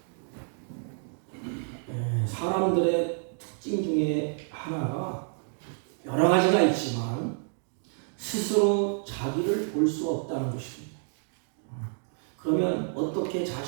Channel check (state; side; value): silent; left; 58 dB below the other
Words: 사람들의 특징 중에 하나가 여러 가지가 있지만 스스로 자기를 볼 수 없다는 것입니다. 그러면 어떻게